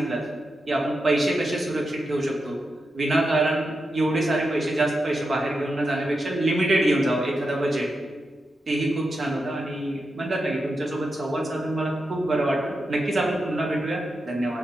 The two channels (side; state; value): both; normal; correlation 0.88